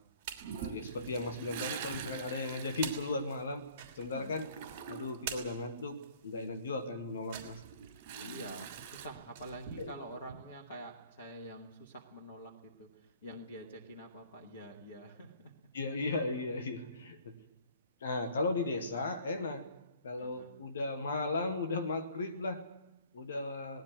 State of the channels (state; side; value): inverted; both; correlation -0.55